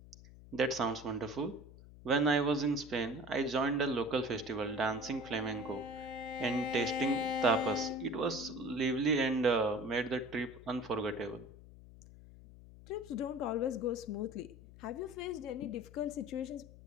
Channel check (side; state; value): left; noise; hum, 19 dB below the sound